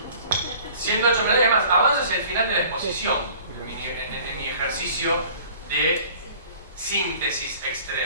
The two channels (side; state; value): both; inverted; correlation -0.49